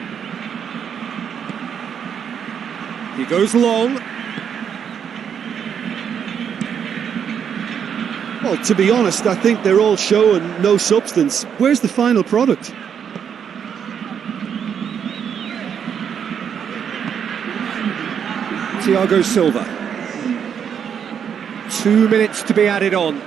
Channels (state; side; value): quieter; left; 7.9 dB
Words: He goes long. Well, to be honest, I think they're all show and no substance. Where's the final product? Thiago Silva. 2 minutes to be added on.